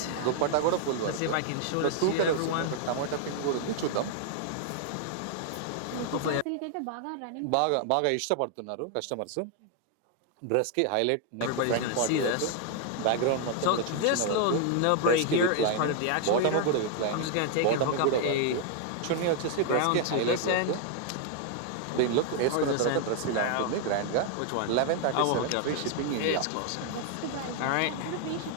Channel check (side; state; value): both; different; correlation 0.00